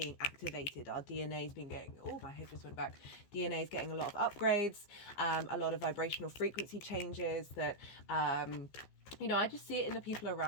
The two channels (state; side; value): late; right; 15 ms